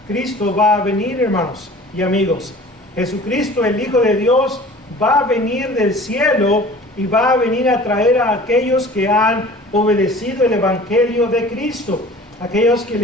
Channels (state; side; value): normal; both; correlation 0.45